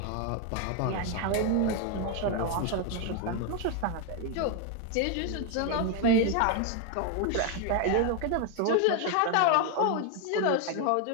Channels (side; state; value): both; different; correlation 0.01